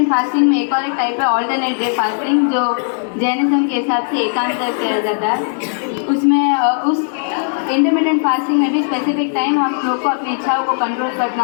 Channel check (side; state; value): right; silent; digital silence